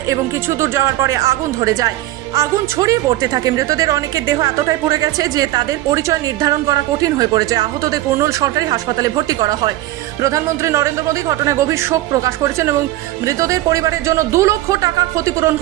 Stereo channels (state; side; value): quieter; left; 15.8 dB